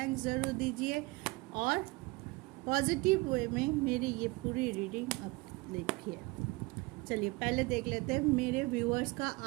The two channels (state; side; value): quieter; left; 24.0 dB